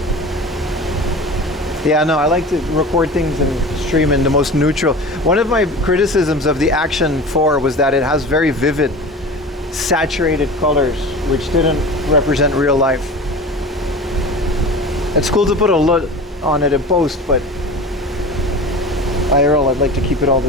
Yeah, no, I like to record things and stream in the most neutral. One of my criticisms of the Action 4 was that it has very vivid, saturated colors, which didn't represent real life. It's cool to put a LUT on it in post, but IRL, I'd like to keep it all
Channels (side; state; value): both; normal; correlation 0.35